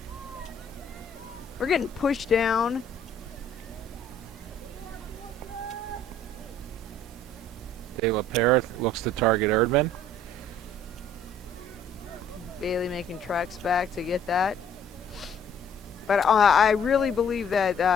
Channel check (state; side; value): normal; both; correlation 0.58